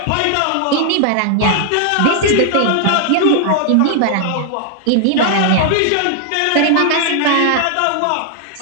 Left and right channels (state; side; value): different; both; correlation 0.00